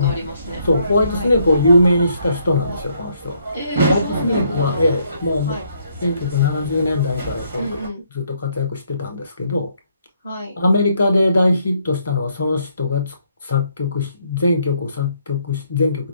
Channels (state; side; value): inverted; both; correlation -0.70